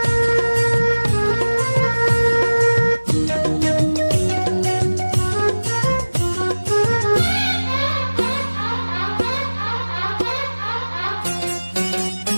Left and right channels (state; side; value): inverted; both; correlation -1.00